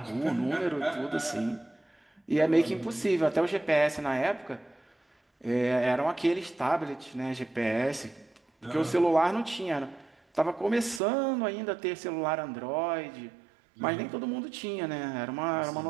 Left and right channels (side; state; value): left; drops out; at 11.0 s